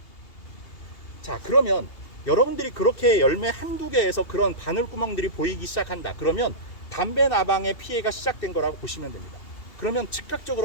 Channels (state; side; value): late; right; 2.8 ms